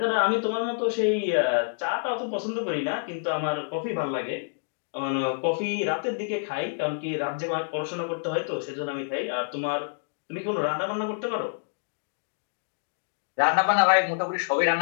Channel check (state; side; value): silent; right; digital silence